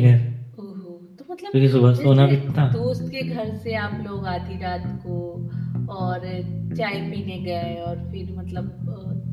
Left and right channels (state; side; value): identical; both; correlation 1.00